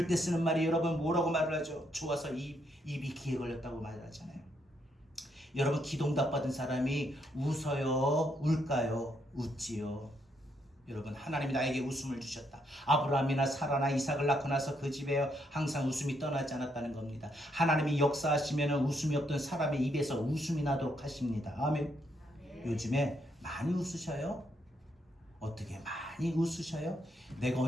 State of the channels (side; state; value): both; normal; correlation 0.75